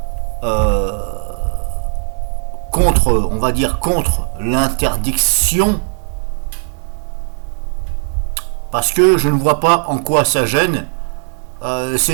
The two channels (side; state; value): left; silent; 63 dB below the other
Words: contre, on va dire contre l'interdiction? Parce que je ne vois pas en quoi ça gêne.